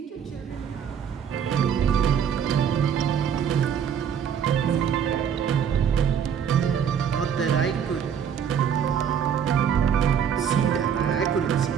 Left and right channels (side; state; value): left; quieter; 7.9 dB